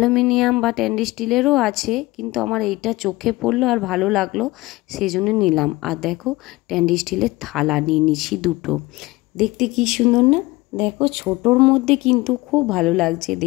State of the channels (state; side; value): quieter; right; 20.5 dB